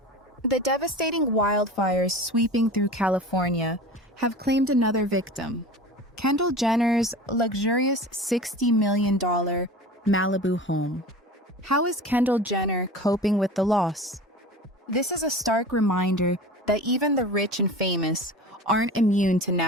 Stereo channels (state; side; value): normal; both; correlation 0.36